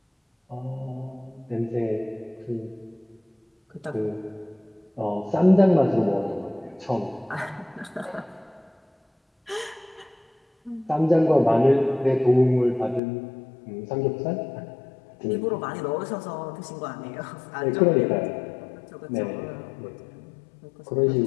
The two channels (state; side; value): drops out; right; at 13.0 s